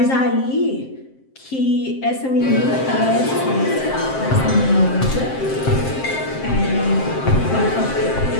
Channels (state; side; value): late; right; 7.6 ms